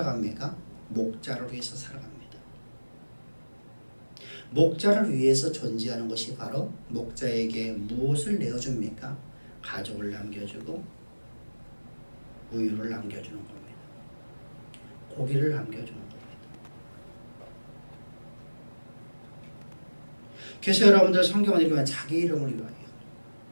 목자를 위해서 살아갑니다. 목자를 위해서 존재하는 것이 바로 목자에게 무엇을 내어줍니까? 가족을 남겨주고 우유를 남겨주는 겁니다. 고기를 남겨주는 겁니다. 그래서 여러분들 성경을 읽으면 자기 이름을 위하여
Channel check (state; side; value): inverted; both; correlation -1.00